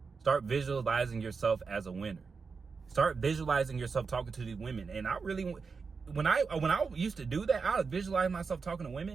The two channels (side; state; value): left; quieter; 5.0 dB